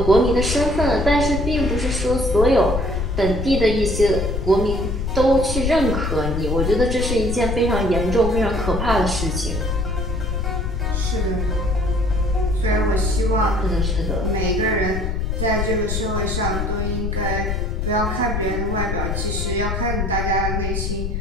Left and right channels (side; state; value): left; noise; rumble, 2 dB below the sound